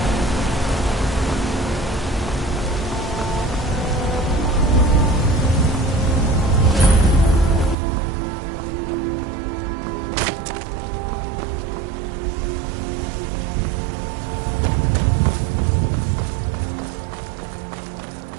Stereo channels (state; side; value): drops out; left; at 7.8 s